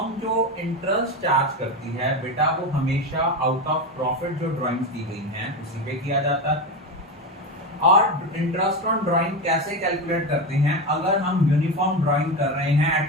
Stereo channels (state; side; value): normal; both; correlation 0.18